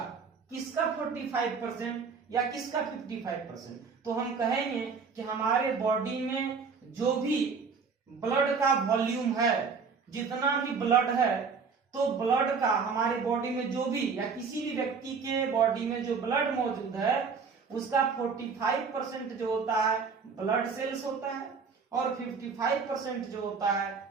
किसका 45% या किसका 55%? तो हम कहेंगे कि हमारे बॉडी में जो भी ब्लड का वॉल्यूम है, जितना भी ब्लड है, तो ब्लड का हमारे बॉडी में जो भी या किसी भी व्यक्ति के बॉडी में जो ब्लड मौजूद है उसका 45% जो होता है ब्लड सेल्स होता है, और 55% जो होता है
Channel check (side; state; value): left; quieter; 5.4 dB